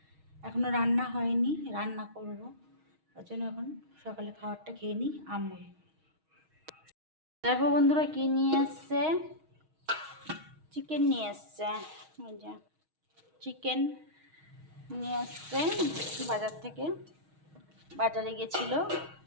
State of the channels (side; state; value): left; late; 6.3 ms